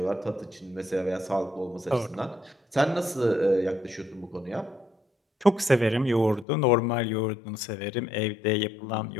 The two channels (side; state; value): right; drops out; at 6.5 s